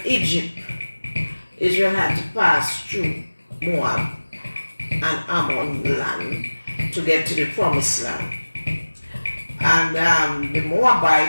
Egypt. Israel had to pass through Moab and Ammon land to get to the promised land. And the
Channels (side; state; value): both; inverted; correlation -1.00